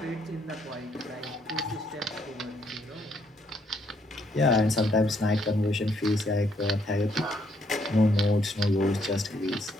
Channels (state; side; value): normal; both; correlation 0.71